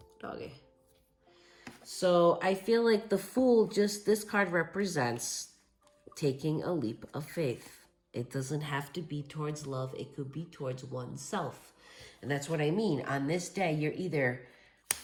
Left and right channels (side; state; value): both; identical; correlation 1.00